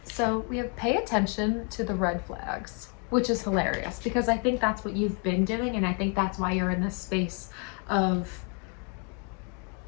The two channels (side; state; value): right; quieter; 36.3 dB